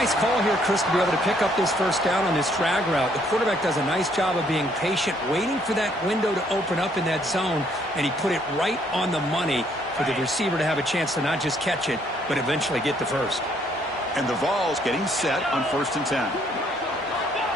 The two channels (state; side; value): normal; both; correlation 0.67